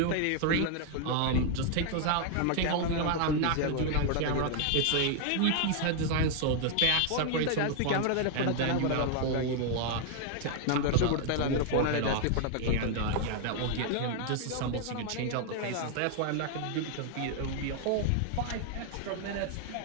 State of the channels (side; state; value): both; different; correlation 0.00